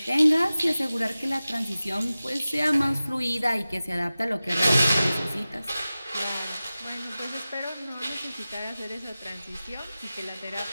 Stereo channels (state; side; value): inverted; both; correlation -0.96